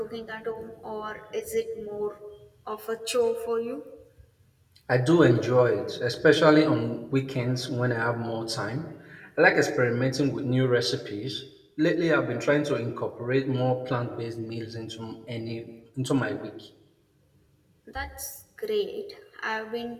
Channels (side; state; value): both; identical; correlation 1.00